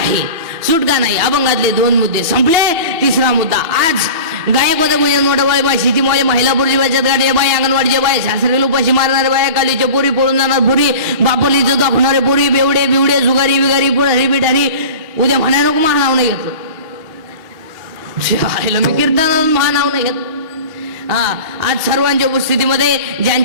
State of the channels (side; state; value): left; late; 2.9 ms